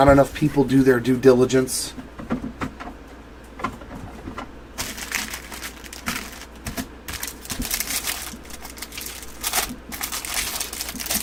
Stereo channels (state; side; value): identical; both; correlation 1.00